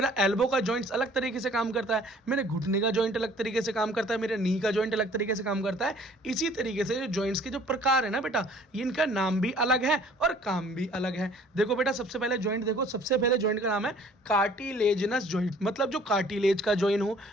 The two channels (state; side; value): normal; both; correlation 0.54